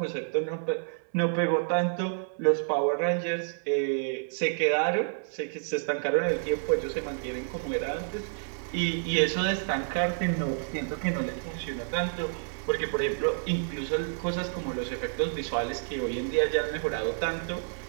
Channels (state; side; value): silent; left; 58 dB below the other